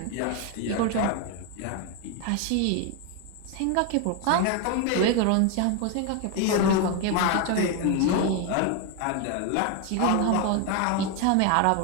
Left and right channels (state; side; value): different; both; correlation 0.01